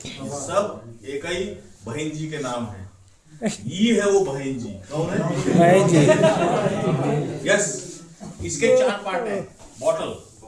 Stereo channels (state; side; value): identical; both; correlation 1.00